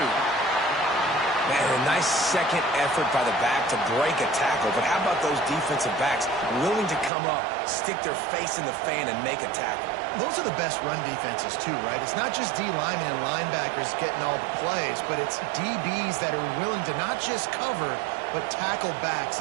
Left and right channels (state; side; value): drops out; left; at 7.1 s